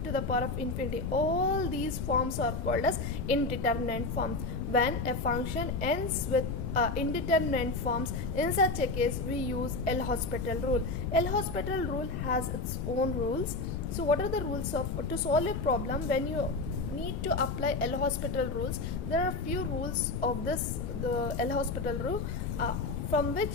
to the power of infinity. All these forms are called as indeterminate forms. When a function ends with indeterminate forms, in such a case we use L'Hospital rule. L'Hospital rule has its own rules. So what are the rules to solve a problem when you need to apply L'Hospital rules? There are few rules of the L'Hospital rule from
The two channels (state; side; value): noise; left; rumble, 3 dB below the sound